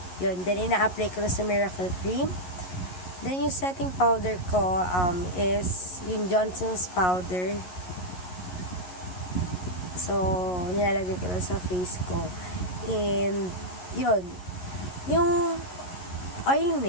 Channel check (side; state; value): right; late; 11 ms